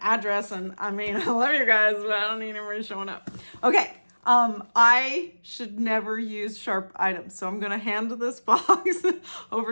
address. And I mean, I love you guys, but I don't need anybody showing up. Okay. I should never use sharp items. So I'm going to hand this box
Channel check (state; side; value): inverted; both; correlation -1.00